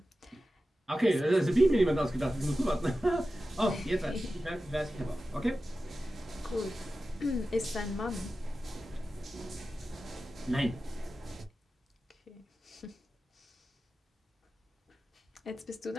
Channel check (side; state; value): both; normal; correlation 0.94